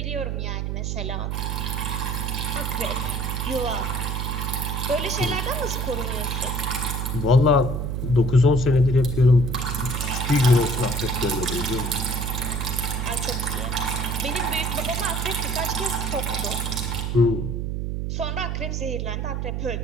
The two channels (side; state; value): right; noise; hum, 2 dB below the sound